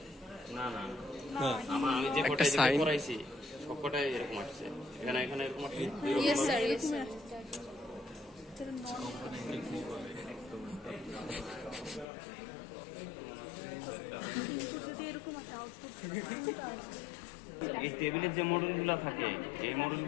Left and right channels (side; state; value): right; drops out; at 12.1 s